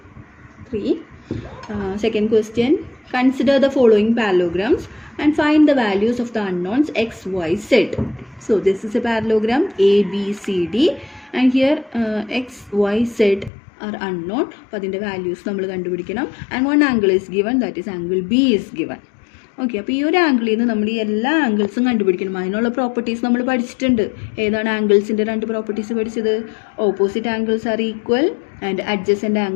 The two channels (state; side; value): drops out; right; at 13.5 s